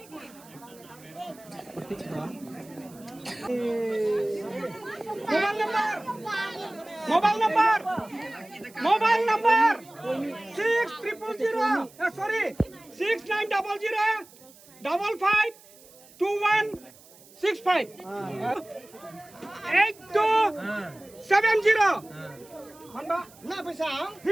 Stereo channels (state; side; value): noise; right; hiss, 24 dB below the sound